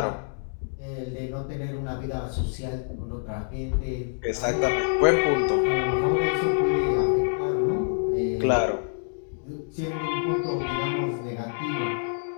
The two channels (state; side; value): silent; right; digital silence